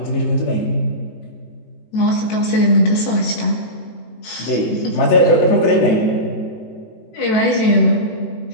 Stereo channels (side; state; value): right; late; 18 ms